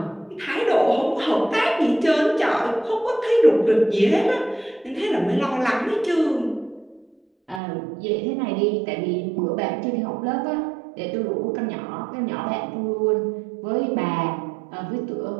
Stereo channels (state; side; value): drops out; left; at 7.6 s